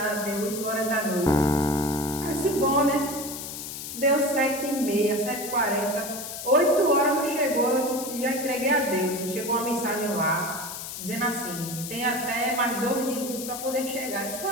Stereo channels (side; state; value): left; noise; hiss, 8 dB below the sound